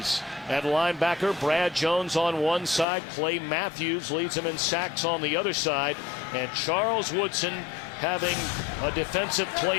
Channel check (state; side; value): drops out; right; at 2.9 s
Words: at linebacker. Brad Jones on one side. Clay Matthews leads him in sacks on the other side. And Charles Woodson having a Defensive